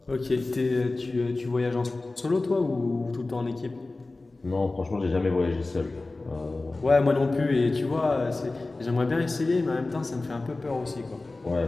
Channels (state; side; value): quieter; right; 3.2 dB